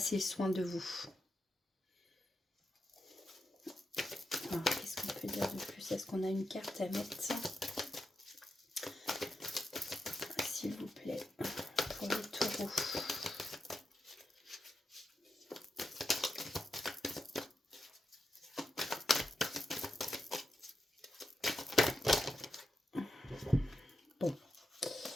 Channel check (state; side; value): normal; both; correlation 0.86